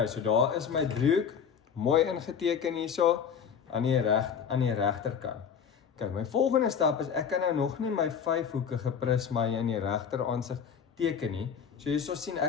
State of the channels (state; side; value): quieter; right; 7.1 dB